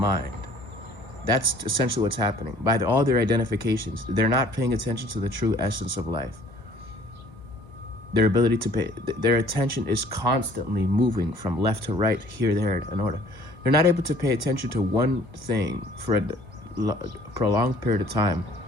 That's essentially what's happening. By all their identifications, they're not paying attention to the true essence of life. Their ability to their attention is constantly moving from left to right, here, there, in order. They're not able to pay attention to one thing for a prolonged period of time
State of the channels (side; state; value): left; late; 1.1 ms